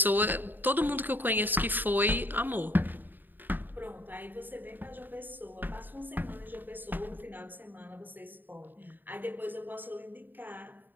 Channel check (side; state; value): left; late; 0.091 ms